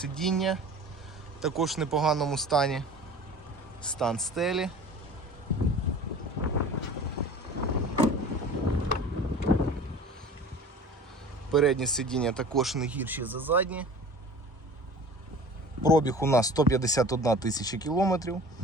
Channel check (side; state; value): both; normal; correlation 0.41